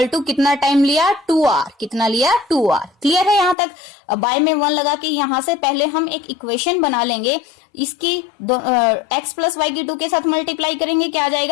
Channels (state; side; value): drops out; right; at 3.6 s